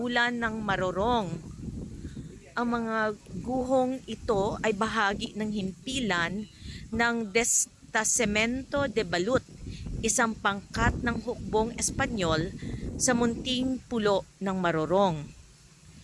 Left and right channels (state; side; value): identical; both; correlation 1.00